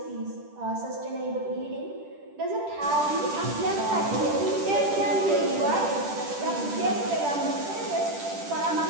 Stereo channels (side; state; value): left; late; 10 ms